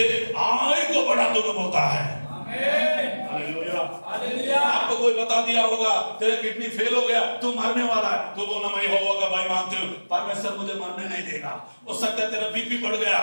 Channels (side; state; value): both; inverted; correlation -1.00